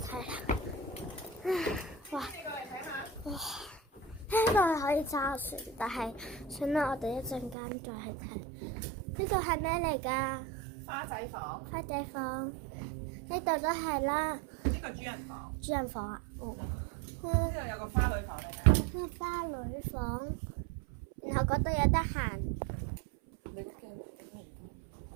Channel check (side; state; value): left; drops out; at 7.6 s